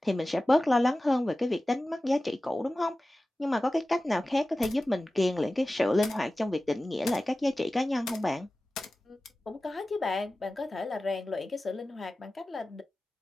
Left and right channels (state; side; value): normal; both; correlation 0.96